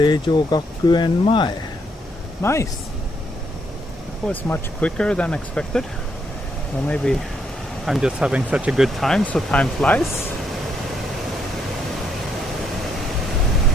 Gakuen Mae. Nice! That was much quicker than expected. Or maybe I'm just having such a good time, so time flies.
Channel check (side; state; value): both; normal; correlation 0.75